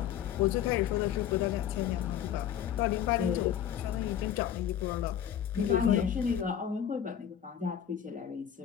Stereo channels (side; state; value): right; quieter; 9.7 dB